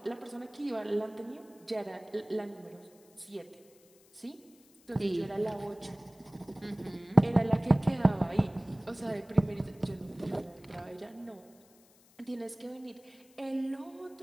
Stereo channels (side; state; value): left; noise; hiss, 28 dB below the sound